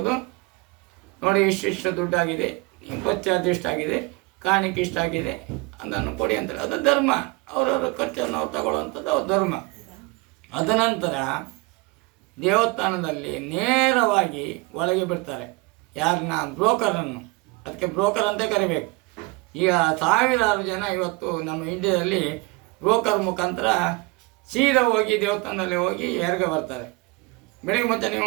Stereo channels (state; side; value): quieter; left; 24.9 dB